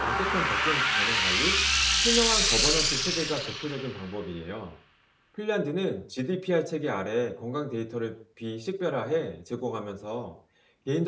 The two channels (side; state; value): both; identical; correlation 1.00